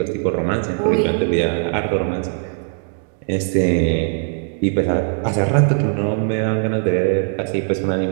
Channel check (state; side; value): silent; left; 61 dB below the other